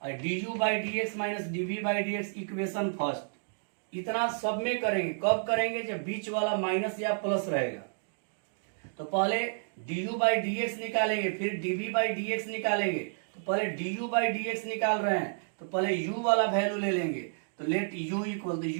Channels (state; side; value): silent; left; digital silence